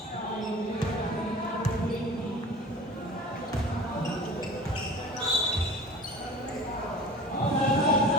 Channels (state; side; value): normal; both; correlation 0.38